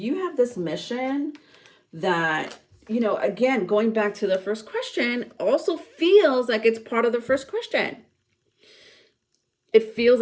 have this mission that, again, going back to the first question, also feels like it's part of the first question. It feels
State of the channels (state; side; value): identical; both; correlation 1.00